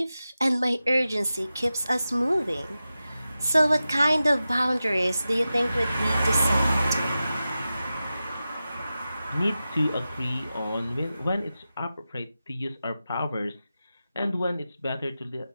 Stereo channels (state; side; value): inverted; both; correlation -0.93